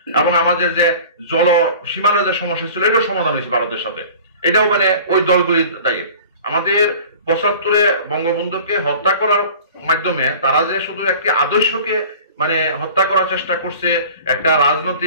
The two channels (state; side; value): inverted; both; correlation -0.43